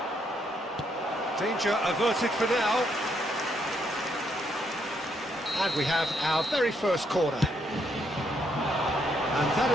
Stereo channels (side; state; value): both; normal; correlation 0.74